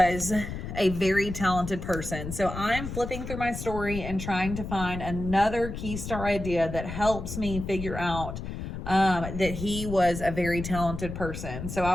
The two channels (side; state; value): left; noise; rumble, 7 dB below the sound